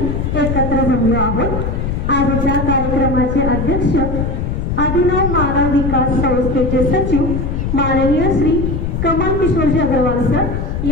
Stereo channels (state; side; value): noise; left; rumble, 2 dB below the sound